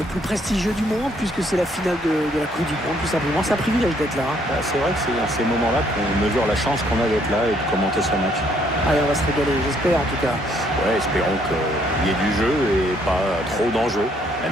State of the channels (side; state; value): both; normal; correlation 0.67